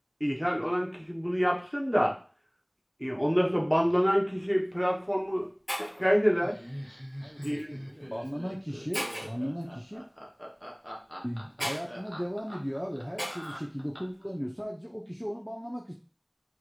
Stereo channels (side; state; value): both; identical; correlation 1.00